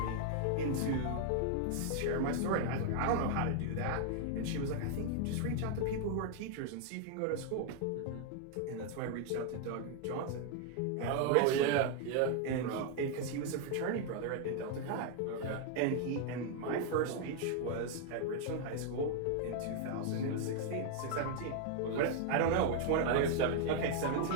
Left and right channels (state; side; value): different; both; correlation 0.00